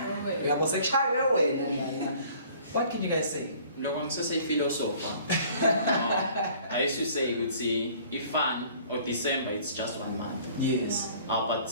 what can you guys say? No one says a philosopher. I used to say, would say, if fun or December, it's just 1 month. Yes. But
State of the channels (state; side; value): inverted; both; correlation -0.53